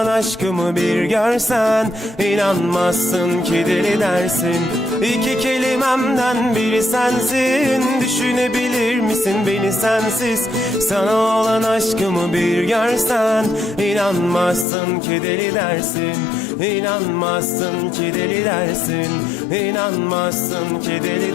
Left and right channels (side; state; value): right; drops out; at 14.7 s